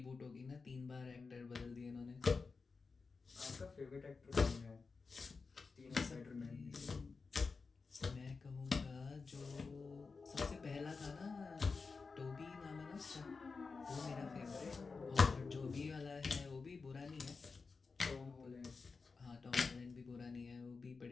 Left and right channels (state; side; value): quieter; right; 4.5 dB